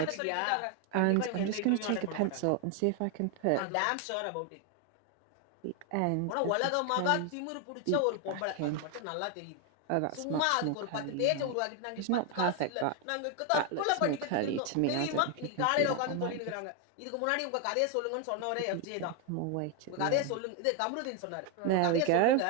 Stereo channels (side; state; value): both; different; correlation 0.01